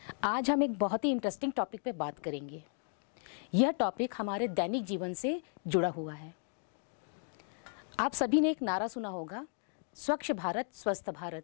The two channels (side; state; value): right; silent; 54 dB below the other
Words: आज हम एक बहुत ही इंटरेस्टिंग टॉपिक पे बात करेंगे। यह टॉपिक हमारे दैनिक जीवन से जुड़ा हुआ है। आप सभी ने एक नारा सुना होगा, स्वच्छ भारत स्वस्थ